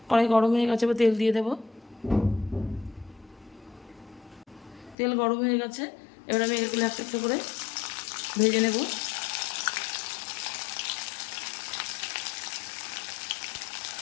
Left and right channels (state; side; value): drops out; right; at 5.0 s